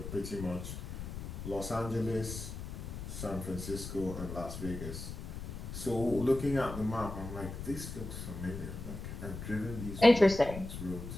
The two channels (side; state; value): left; noise; rumble, 8 dB below the sound